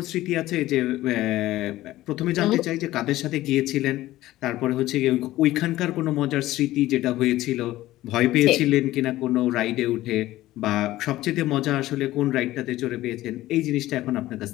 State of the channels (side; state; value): right; quieter; 16.0 dB